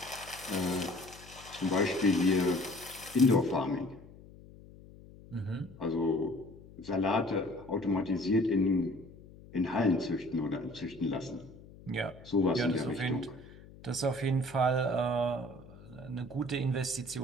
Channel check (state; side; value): noise; left; hum, 20 dB below the sound